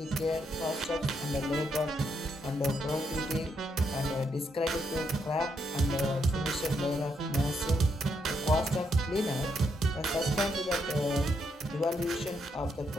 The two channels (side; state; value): both; normal; correlation 0.78